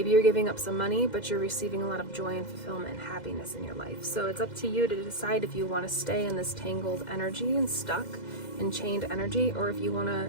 you're giving up some money, but you're receiving a lot of joy and fulfillment and happiness in your life. So it's up to you to decide if you want to stay in this tangled energy and stuck and chained energy, or if you want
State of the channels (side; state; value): right; late; 2.0 ms